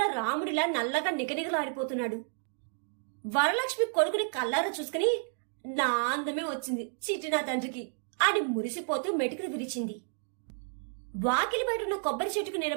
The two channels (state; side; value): silent; left; 57 dB below the other